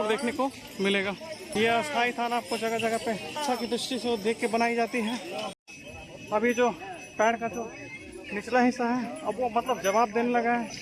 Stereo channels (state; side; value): identical; both; correlation 1.00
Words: देखने को मिलेगा। ये अस्थायी थाना आपको जगह जगह पे अच्छा की दृष्टि से देख के बनाई जाती है। अभी जो पैर का जो निचला हिस्सा है अब वो मतलब जवाब देने लगा है,